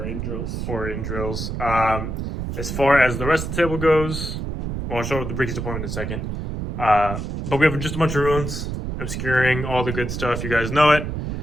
in drills. Or in drills. As far as the rest of the table goes, well, I'll show the Ricky's deployment in a second. But we have just a bunch of ruins, obscuring all the good stuff. You guys know it.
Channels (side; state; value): right; noise; rumble, 4 dB below the sound